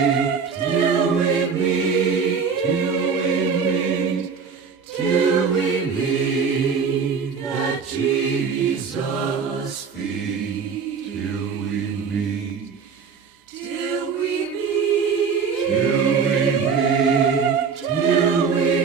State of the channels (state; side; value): quieter; left; 5.8 dB